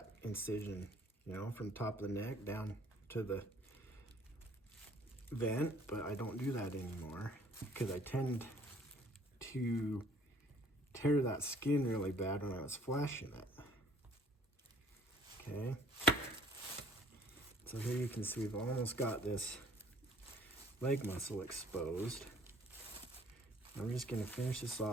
incision, you know, from top of the neck down to the vent, but I don't do that anymore because I tend to tear that skin really bad when I was flashing it. Okay, so here you can see we've almost got this leg muscle exposed. I'm just going to finish this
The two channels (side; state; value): both; normal; correlation 0.57